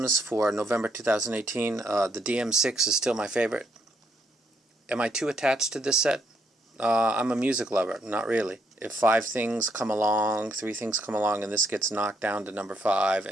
for November 2018. The DM6 is still my favorite. Am I too attached to this set? I'm a music lover. Not really. If 3 things come along, and this gets knocked down to number 5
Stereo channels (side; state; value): both; normal; correlation 0.74